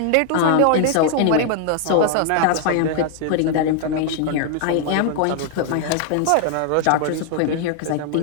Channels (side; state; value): both; different; correlation 0.00